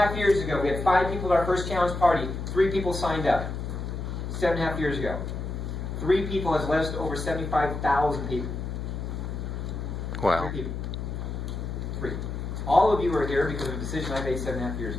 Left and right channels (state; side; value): noise; left; hum, 5 dB below the sound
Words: years ago, we had 5 people at our first challenge party. 3 people signed up. 7.5 years ago. 3 people has led us to over 75,000 people. Wow. 3 people. 3. All of you are here because of a decision I made 7.5 years